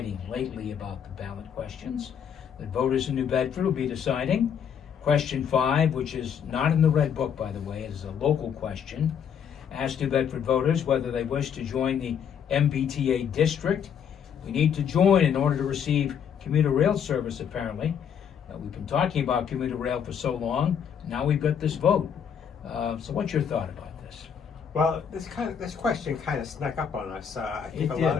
lately about the ballot questions that voters in New Bedford will be deciding. Question 5, which is not in the Red Book, by the way, it is a local question, asks New Bedford voters whether they wish to join the MBTA district. We need to join in order to receive commuter rail service, apparently. We've been talking about commuter rail for so long, now we've got this vote. So what's your thought about this? Well, this question kind of snuck up on us. I think a lot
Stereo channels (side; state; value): right; quieter; 7.9 dB